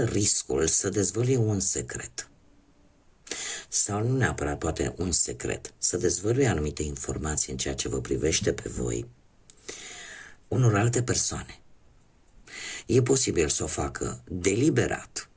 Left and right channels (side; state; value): both; identical; correlation 1.00